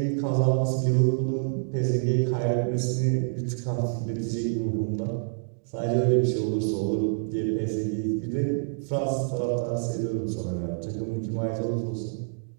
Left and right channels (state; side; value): silent; left; digital silence